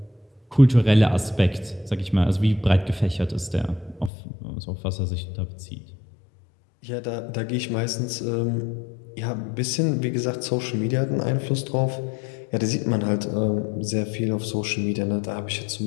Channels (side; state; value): right; drops out; at 4.1 s